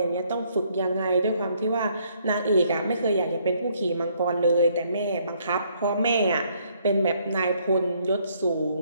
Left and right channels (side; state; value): both; inverted; correlation -0.68